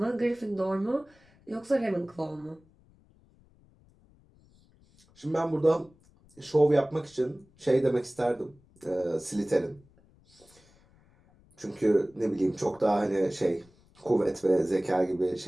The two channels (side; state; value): left; noise; rumble, 30 dB below the sound